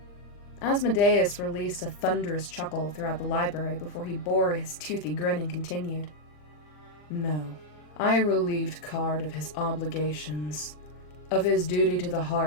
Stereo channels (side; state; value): right; late; 40 ms